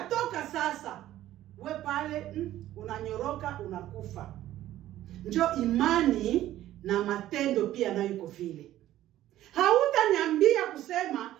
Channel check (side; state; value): left; quieter; 13.7 dB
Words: toka sasa, we pale unanyoroka, unakufa. Njo imani na matendo pia nayo iko vile. Hautaniambia kusema